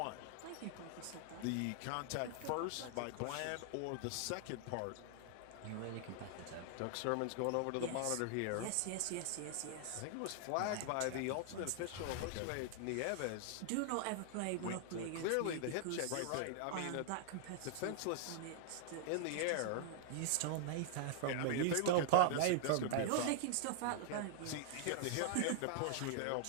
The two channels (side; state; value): both; different; correlation -0.01